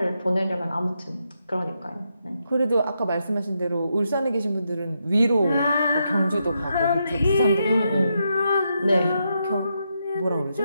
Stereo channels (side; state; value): both; inverted; correlation -0.82